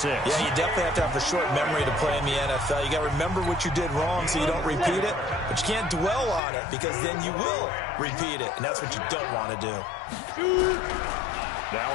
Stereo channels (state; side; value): drops out; right; at 6.4 s